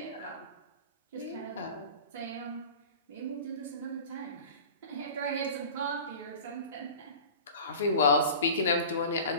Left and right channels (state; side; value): inverted; both; correlation -0.37